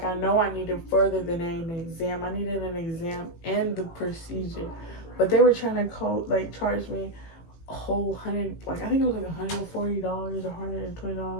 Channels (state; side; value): late; right; 18 ms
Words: I know I needed further than an exam. I needed an exam and the procedure. But they were trying to charge me a whole hundred, like I think it was like $140 or